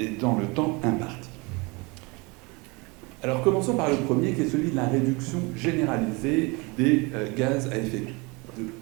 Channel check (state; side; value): quieter; left; 27.6 dB